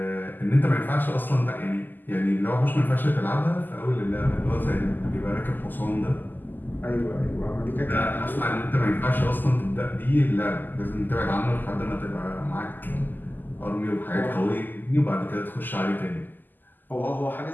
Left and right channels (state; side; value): late; right; 0.088 ms